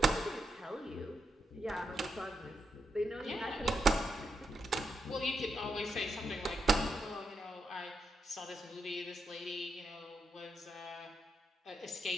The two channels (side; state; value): both; normal; correlation 0.83